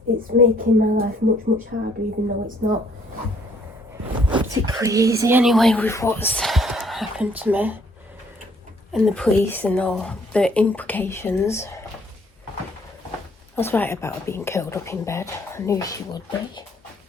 It's making my life much, much harder, even though it's not particularly easy anyway with what's happened to me and the police and all the implications. I was right about her being curled up in bed. I knew she would be.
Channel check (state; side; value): normal; both; correlation 0.64